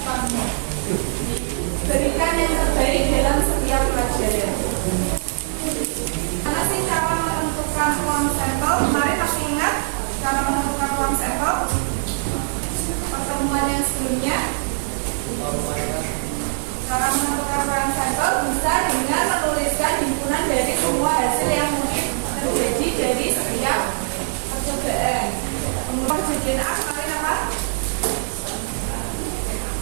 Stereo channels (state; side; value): silent; left; digital silence